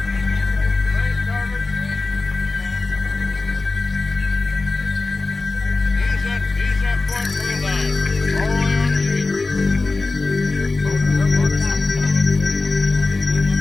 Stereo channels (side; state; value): right; quieter; 3.5 dB